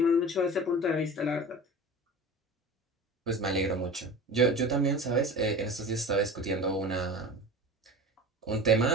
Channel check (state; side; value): normal; both; correlation 0.35